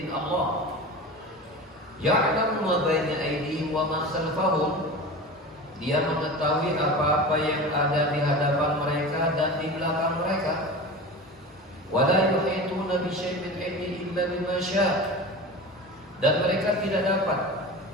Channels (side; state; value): both; normal; correlation 0.32